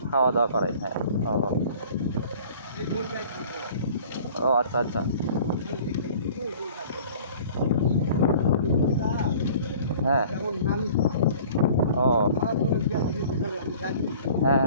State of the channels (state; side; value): inverted; both; correlation -0.48